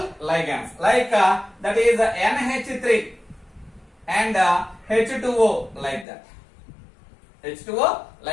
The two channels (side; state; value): right; drops out; at 6.1 s